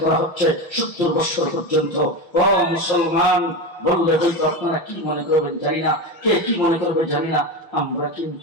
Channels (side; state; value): right; late; 6.1 ms